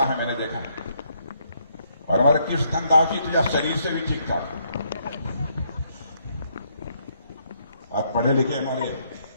हैं, मैंने देखा है। और हमारे कृष्णधन दास जी तो या शरीर से भी ठीक ठाक, आज पढ़े लिखे हमारे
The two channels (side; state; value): both; inverted; correlation -0.72